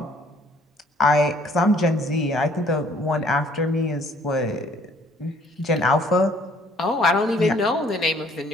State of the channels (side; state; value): both; normal; correlation 0.60